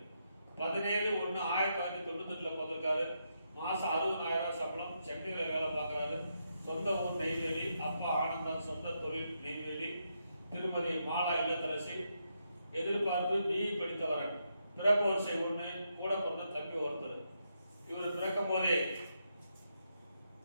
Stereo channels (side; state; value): both; inverted; correlation -0.81